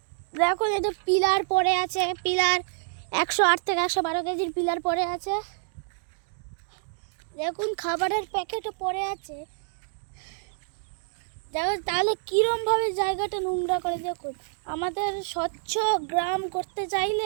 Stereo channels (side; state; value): left; silent; digital silence